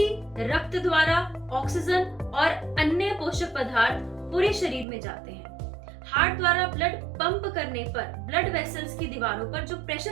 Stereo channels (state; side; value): drops out; left; at 4.9 s